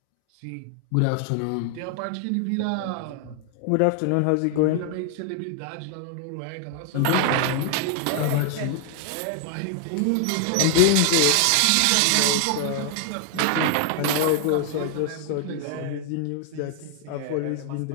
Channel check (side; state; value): both; different; correlation 0.00